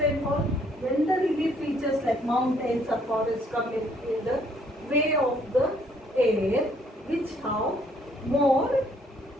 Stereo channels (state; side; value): normal; both; correlation 0.65